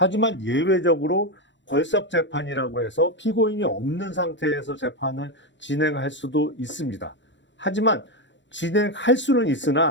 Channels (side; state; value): right; late; 0.53 ms